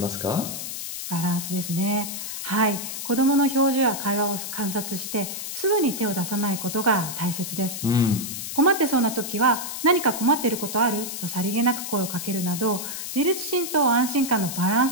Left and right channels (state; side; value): noise; left; hiss, 6 dB below the sound